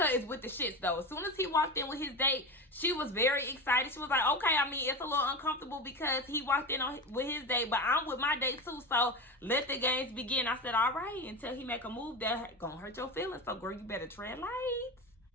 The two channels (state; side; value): normal; both; correlation 0.23